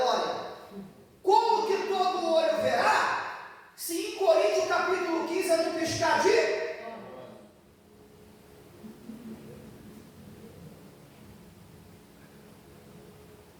Como que todo olho verá, se em Coríntios capítulo 15 é no piscar de...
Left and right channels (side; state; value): both; identical; correlation 1.00